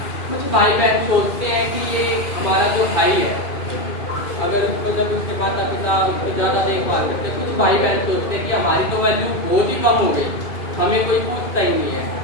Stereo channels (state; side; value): late; right; 2.5 ms